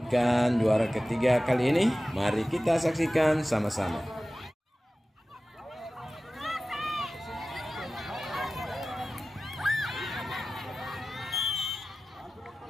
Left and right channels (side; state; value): both; normal; correlation 0.96